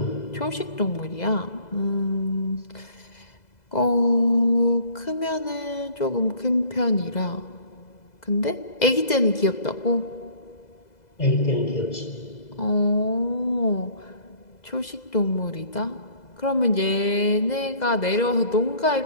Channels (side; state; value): right; late; 2.0 ms